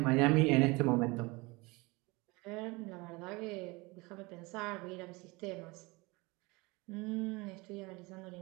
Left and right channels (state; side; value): quieter; left; 24.7 dB